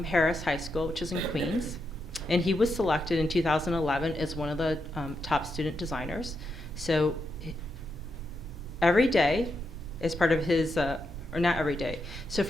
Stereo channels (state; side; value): normal; both; correlation 0.83